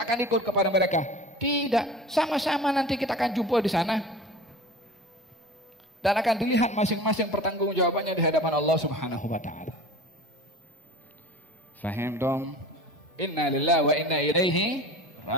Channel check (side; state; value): both; normal; correlation 0.38